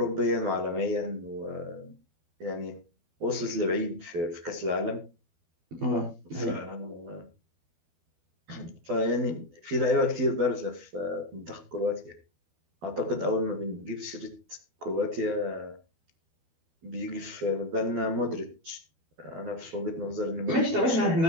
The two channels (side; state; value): left; late; 12 ms